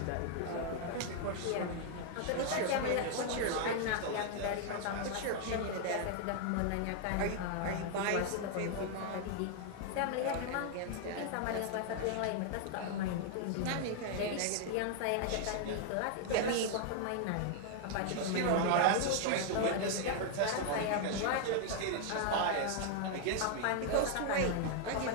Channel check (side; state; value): both; different; correlation 0.00